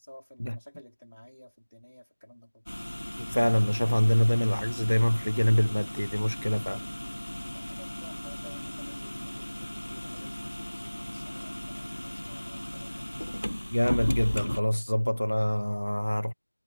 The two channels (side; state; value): both; inverted; correlation -1.00